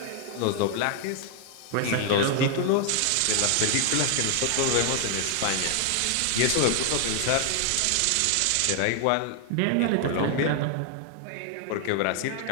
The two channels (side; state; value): both; different; correlation 0.00